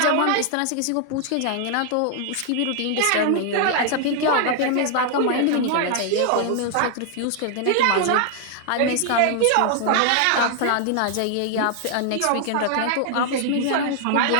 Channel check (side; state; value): both; different; correlation 0.00